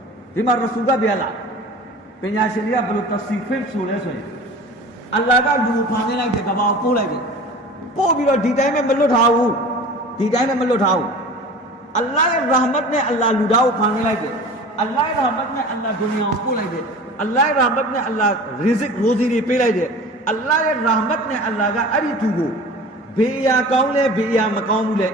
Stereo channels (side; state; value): both; normal; correlation 0.39